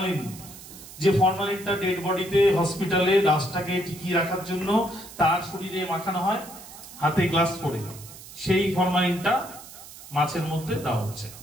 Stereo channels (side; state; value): right; noise; hiss, 16 dB below the sound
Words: যে ফরমালিনটা ডেড বডিতে হসপিটালে লাশটাকে টিকিয়ে রাখার জন্য তার শরীরে মাখানো হয় হাতে গ্লাস করে, সেই ফরমালিনটা মাছের মধ্যে দেওয়া হচ্ছে।